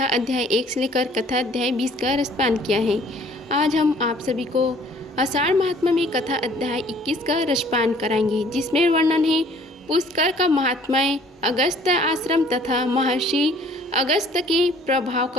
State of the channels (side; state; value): both; normal; correlation 0.55